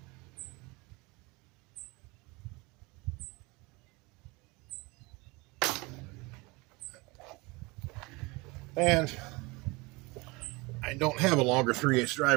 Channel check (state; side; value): quieter; left; 25.3 dB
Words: And I don't have a longer 3/8